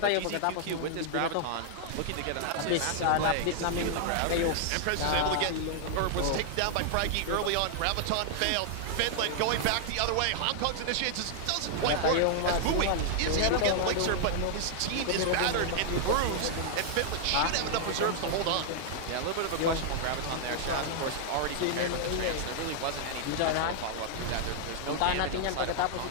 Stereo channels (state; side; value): different; both; correlation -0.01